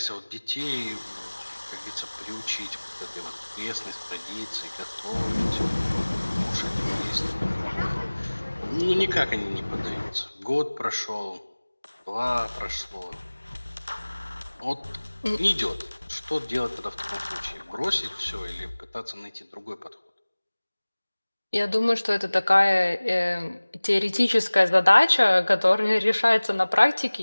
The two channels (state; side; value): inverted; both; correlation -1.00